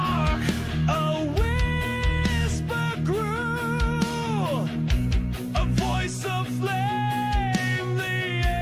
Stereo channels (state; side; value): identical; both; correlation 1.00